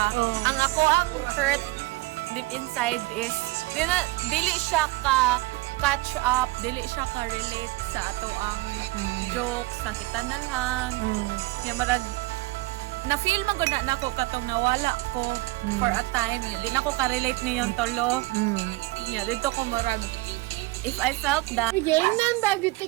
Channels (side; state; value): left; quieter; 22.1 dB